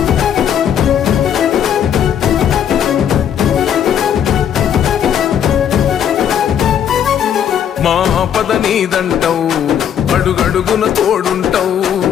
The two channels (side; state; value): right; quieter; 9.1 dB